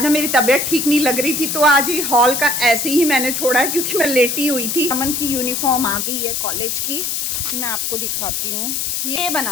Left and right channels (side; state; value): left; noise; hiss, 1 dB below the sound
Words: ना मेरी तबीयत ठीक नहीं लग रही थी तो आज ही हॉल का ऐसे ही मैंने छोड़ा है क्योंकि मैं लेटी हुई थी। अमन की यूनिफॉर्म आ गई है कॉलेज की, मैं आपको दिखाती हूँ। ये